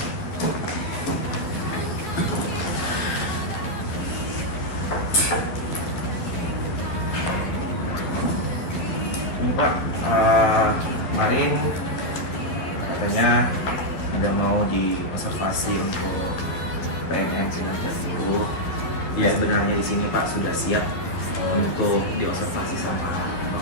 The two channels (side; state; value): right; late; 11 ms